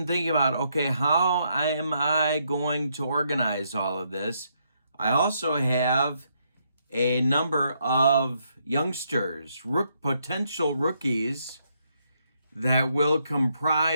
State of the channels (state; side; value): inverted; both; correlation -0.76